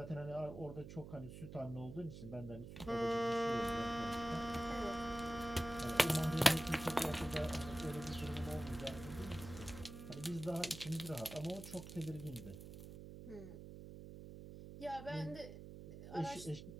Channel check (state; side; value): noise; right; hum, 12 dB below the sound